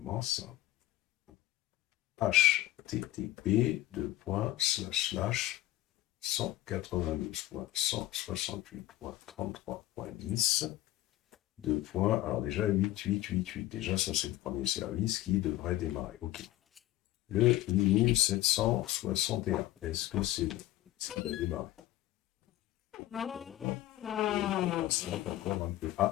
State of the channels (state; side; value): quieter; right; 15.1 dB